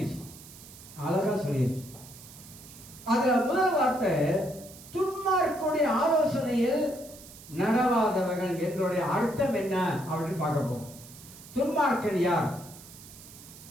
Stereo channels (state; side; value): noise; right; hiss, 18 dB below the sound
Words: அதுல முதல் வார்த்தை துன்மார்க்கனுடைய ஆலோசனையில் நடவாதவர்கள் என்னுடைய அர்த்தம் என்ன அப்படின்னு பார்க்க போறோம். துன்மார்க்கன் யார்?